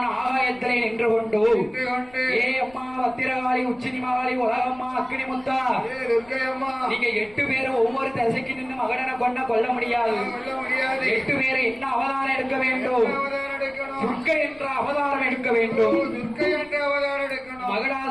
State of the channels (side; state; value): left; noise; rumble, 26 dB below the sound